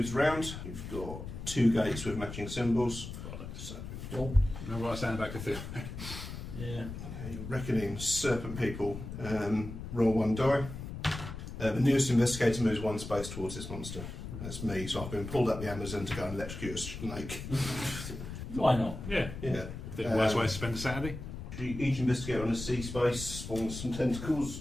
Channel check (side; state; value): left; noise; rumble, 9 dB below the sound